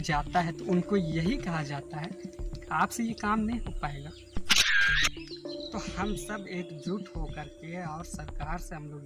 जाता है तो उनको यही कहा जाता है आपसे ये काम नहीं हो पाएगा। तो हम सब एकजुट होकर के और सरकार से हम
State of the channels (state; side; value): identical; both; correlation 1.00